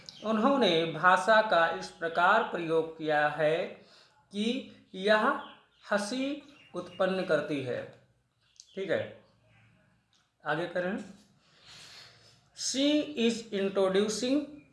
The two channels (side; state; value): both; identical; correlation 1.00